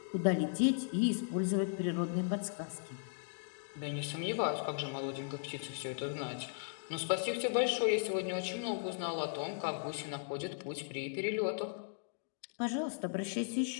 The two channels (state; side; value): silent; right; digital silence